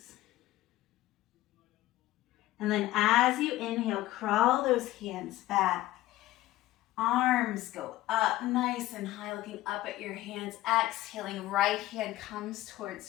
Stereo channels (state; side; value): quieter; right; 16.2 dB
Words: And then as you inhale, crawl those hands back. Arms go up nice and high, looking up at your hands. Exhaling, right hand comes towards